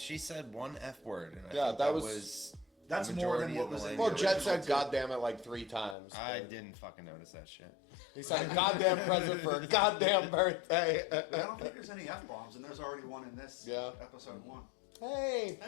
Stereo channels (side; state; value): right; drops out; at 6.0 s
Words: said one F word. And I Yeah, think that was was that's the more than majority what of the was in language. Well, Jet said original, too. "goddamn it" like 3 times. I but didn't fucking notice that shit. He said "goddamn present for a goddamn birthday." I don't think there's any F bombs, and there's already one in this episode 1. Hey,